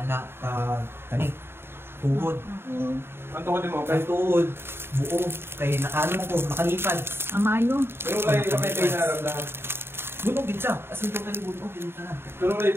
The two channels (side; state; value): left; late; 0.11 ms